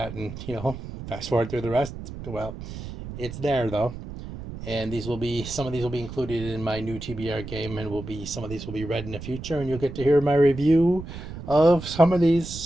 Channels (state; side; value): noise; right; rumble, 11 dB below the sound